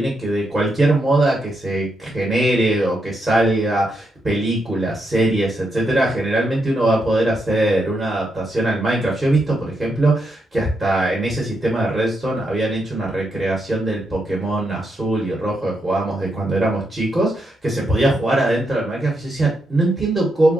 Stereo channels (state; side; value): normal; both; correlation 0.82